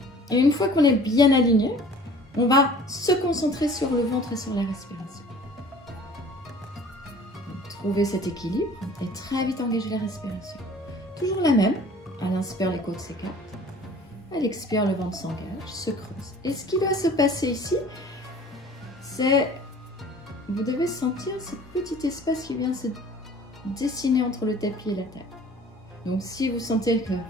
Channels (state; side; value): normal; both; correlation 0.48